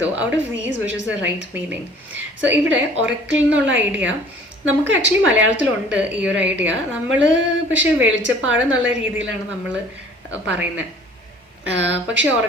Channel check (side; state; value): both; normal; correlation 0.51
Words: though out of these which is the right meaning. So ഇവിടെ oracle എന്നുള്ള ഐഡിയ നമുക്ക് ആക്ച്വലി മലയാളത്തിലുണ്ട് ഈ ഒരു ഐഡിയ. നമ്മൾ പക്ഷേ വെളിച്ചപ്പാട് എന്നുള്ള രീതിയിലാണ് നമ്മൾ പറയുന്നത്. പക്ഷേ